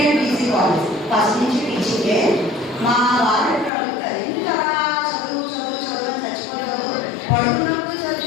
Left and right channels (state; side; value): drops out; right; at 3.7 s